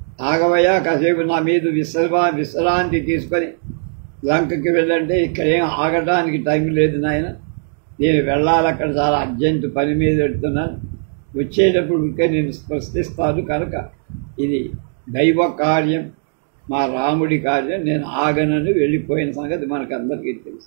ఆగవయ్యా, కాసేపు నా మీద విశ్రాంతి తీసుకొని లంకకి వెళ్ళంటే ఇక్కడేం ఆగటానికి టైం లేదు నాయన, నేను వెళ్ళాలి, అక్కడ చాలా అర్జెంటు పని మీద పెడుతున్నాను, వచ్చేటప్పుడు ఇంకా నేను స్పృశిస్తాను, కనుక ఇది దైవ కార్యం, మా రాముడి కార్యం, నేను ఆగనని వెళ్ళిపోయిన సంగతి మనకందరికీ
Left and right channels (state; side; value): silent; left; 63 dB below the other